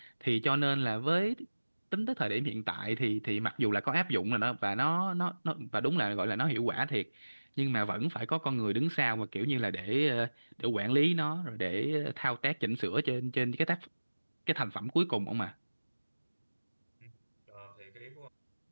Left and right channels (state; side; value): inverted; both; correlation -1.00